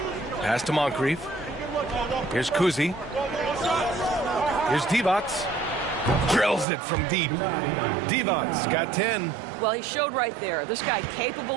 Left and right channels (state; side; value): drops out; left; at 6.7 s